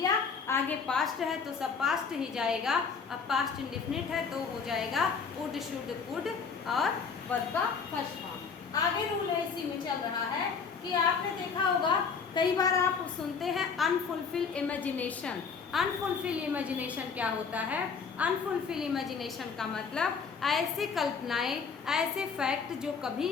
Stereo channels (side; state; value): right; quieter; 5.7 dB